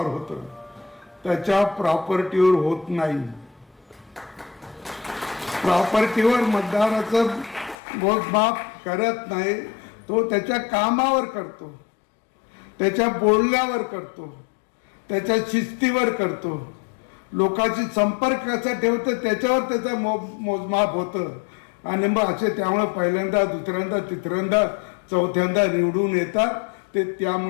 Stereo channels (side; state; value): right; drops out; at 7.8 s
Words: होतं, त्याच्या प्रॉपर्टीवर होत नाही. प्रॉपर्टीवर मतदाराचं मोजमाप करत नाही, तो त्याच्या कामावर करतो, त्याच्या बोलण्यावर करतो, त्याच्या शिस्तीवर करतो, लोकांशी संपर्क कसा ठेवतो त्याच्यावर त्याचं मोजमाप होतं. आणि मग असे त्यामुळे पहिल्यांदा, दुसऱ्यांदा, तिसऱ्यांदा, चौथ्यांदा निवडून येतात. ते